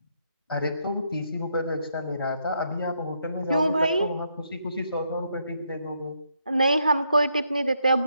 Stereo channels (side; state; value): both; inverted; correlation -0.76